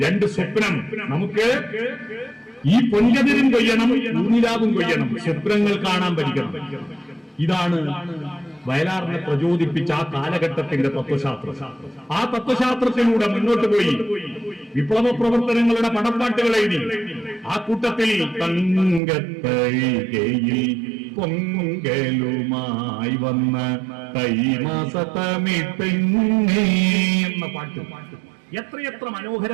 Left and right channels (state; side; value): drops out; left; at 19.0 s